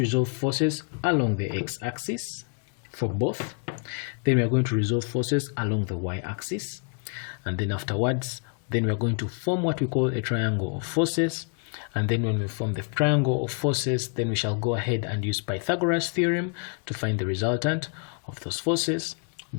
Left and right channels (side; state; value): right; quieter; 40.0 dB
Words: forces along the x-axis for both. Then we are going to resolve forces along the y-axis. And then afterwards, then we are going to form what we call a triangle of forces. And then when we form the triangle of forces, then we shall go ahead and use Pythagoras theorem to find the resultant of those forces.